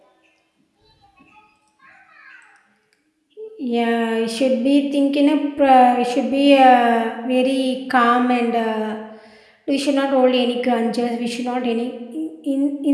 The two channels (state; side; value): identical; both; correlation 1.00